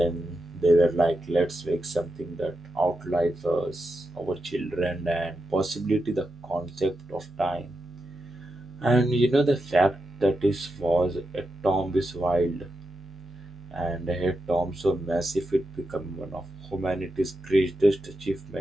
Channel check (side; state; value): both; normal; correlation 0.87